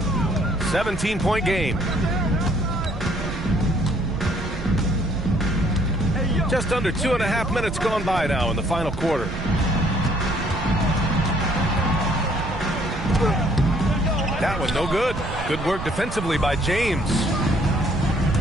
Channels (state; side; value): noise; right; rumble, 8 dB below the sound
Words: 17-point game. Just under 2.5 minutes gone by now in the final quarter. That one no good. Good work defensively by James.